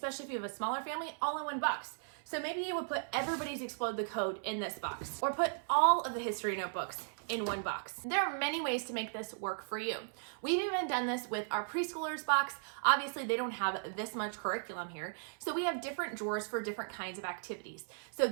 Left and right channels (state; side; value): silent; left; 53 dB below the other